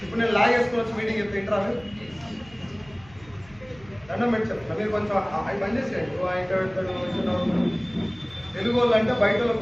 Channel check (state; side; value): noise; right; hum, 24 dB below the sound